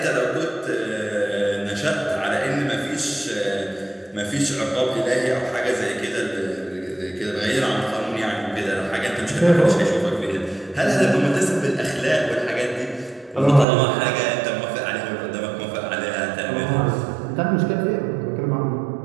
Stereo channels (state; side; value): drops out; left; at 13.7 s